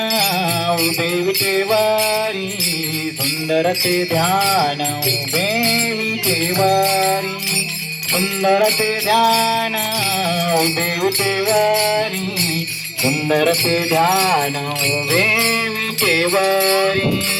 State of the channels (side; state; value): both; identical; correlation 1.00